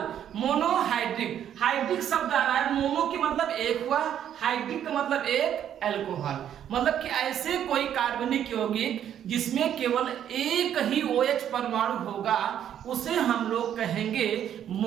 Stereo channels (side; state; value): left; quieter; 10.0 dB